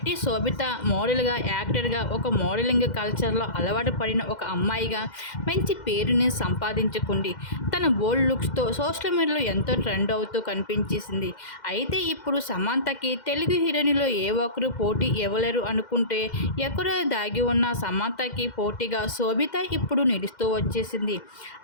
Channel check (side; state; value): right; late; 2.1 ms